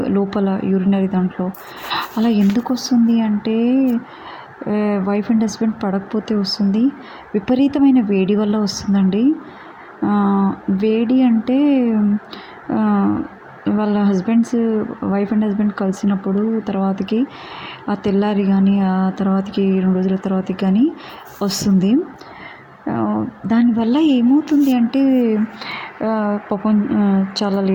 లోపల యూరినరీ దాంట్లో. అలా ఎందుకొస్తుంది అంటే వైఫ్ అండ్ హస్బెండ్ పడకపోతే వస్తుంది. విపరీతమైన వేడి వల్ల వస్తుందండి. వేడి అంటే ఆహ్, వాళ్ళ వైఫ్ అండ్ హస్బెండ్ కలిసినప్పుడు తర్వాతకి ఆ తెల్లారి గానీ, ఆ తర్వాతకి 2 రోజుల తర్వాతకి గానీ వస్తుంది. దానివల్ల ఏమవుతుంది అంటే పాపం చాలా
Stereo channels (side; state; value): both; identical; correlation 1.00